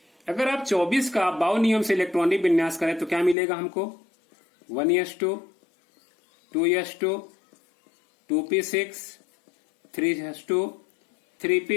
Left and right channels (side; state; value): right; drops out; at 3.4 s